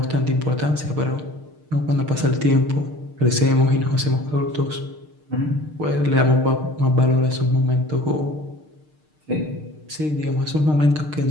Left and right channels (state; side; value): late; left; 6.6 ms